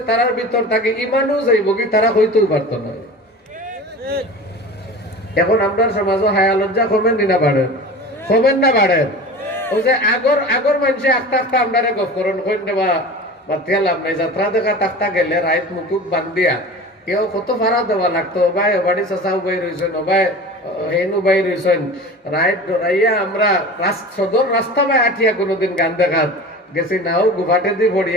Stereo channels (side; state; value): both; normal; correlation 0.35